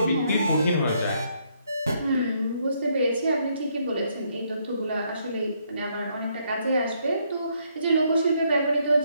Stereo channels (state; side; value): inverted; both; correlation -0.72